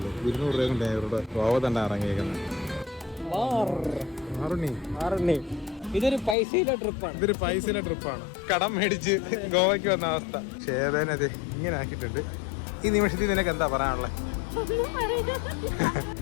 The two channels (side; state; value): right; drops out; at 6.4 s